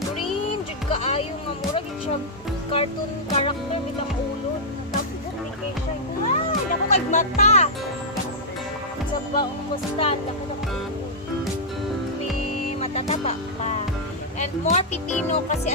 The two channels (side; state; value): both; normal; correlation -0.09